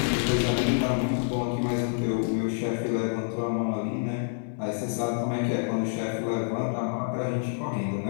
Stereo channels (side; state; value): right; silent; digital silence